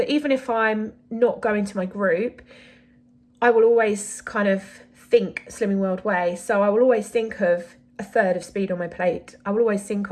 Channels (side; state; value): both; identical; correlation 1.00